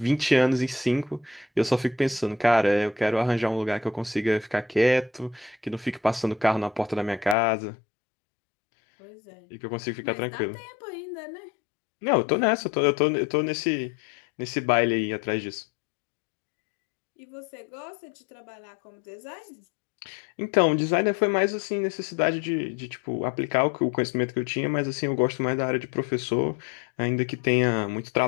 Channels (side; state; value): right; drops out; at 7.4 s